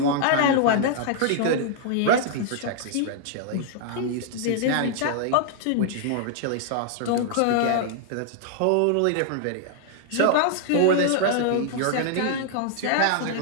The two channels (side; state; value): both; different; correlation -0.01